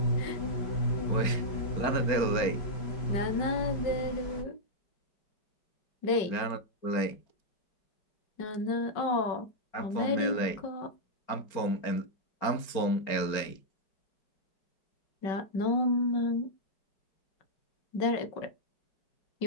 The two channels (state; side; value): late; right; 4.4 ms